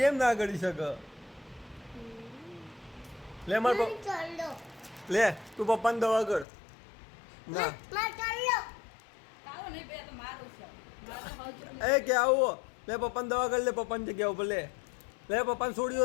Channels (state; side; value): drops out; right; at 6.5 s